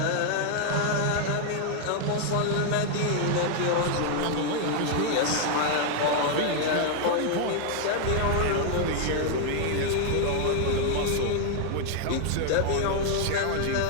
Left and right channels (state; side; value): different; both; correlation 0.00